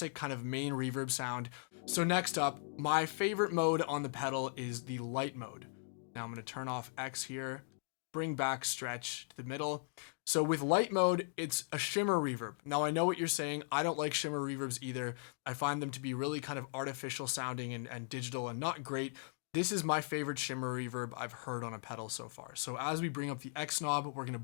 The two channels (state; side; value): silent; right; digital silence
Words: kind of main reverb sound. So next up, my favorite mode on the pedal is the light mode. Now I'm going to turn off X here, bring back stretch to the middle. So with light mode, it's a shimmer reverb. Now I know what you're saying. I don't like shimmer reverbs either. I find them to be really kind of artificial sounding and digital and not great. This is my favorite shimmer reverb I've heard on a pedal so far. So as we bring up the X knob, we're going to